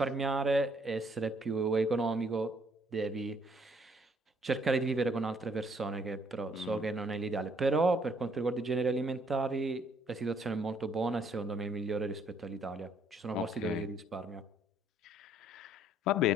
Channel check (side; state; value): both; normal; correlation 0.65